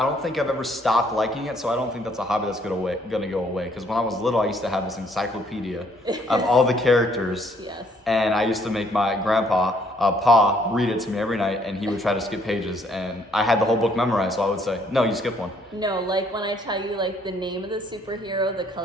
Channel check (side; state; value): both; normal; correlation 0.66